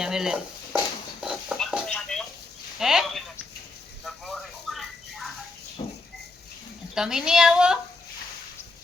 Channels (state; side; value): quieter; right; 3.2 dB